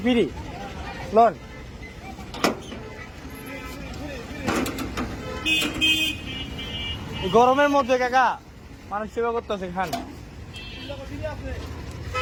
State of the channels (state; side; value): identical; both; correlation 1.00